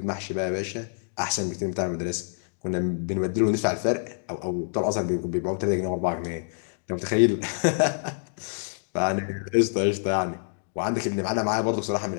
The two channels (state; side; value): silent; right; digital silence